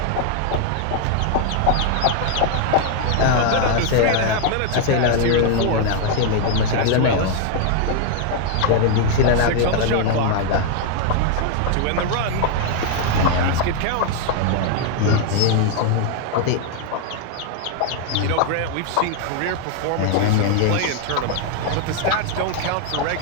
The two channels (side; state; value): both; different; correlation 0.00